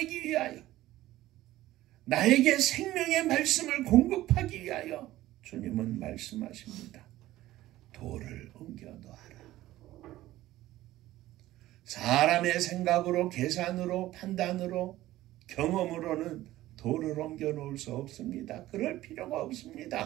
위하여, 나에게 생명의 말씀을 공급하기 위하여 주님은 말씀하십니다. 돌을 옮겨 놓아라. 사람의 생각으로, 계산으로, 판단으로, 경험으로는 돌을 옮겨 놓을 수 없습니다. 그럴 필요가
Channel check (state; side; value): quieter; left; 15.6 dB